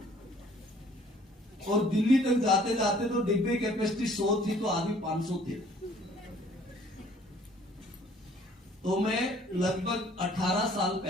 और दिल्ली तक जाते जाते तो डिब्बे कैपेसिटी 100 थी, तो आदमी 500 थे। तो मैं लगभग 18 साल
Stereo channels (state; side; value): normal; both; correlation 0.57